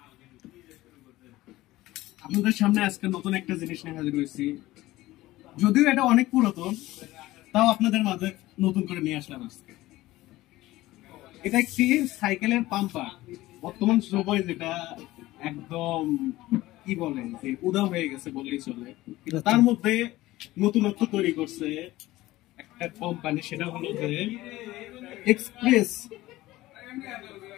আপনাদের সামনে আজকে নতুন একটা জিনিস নিয়ে হাজির হয়েছি। যদিও এটা অনেক পুরাতন, তাও আপনাদের মাঝে নতুন করে নিয়ে আসলাম আজকে। এটা একটি সাইকেলের পাম্পার। বর্তমান সময় যেটা একদম কি বলে যে উদাও হয়ে গেছে বললেই চলে, কিন্তু তার মধ্যে নতুনত্ব তৈরি করছে একটা কোম্পানি, সেটা হলো যে এক্সপ্রেস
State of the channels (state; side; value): quieter; right; 17.4 dB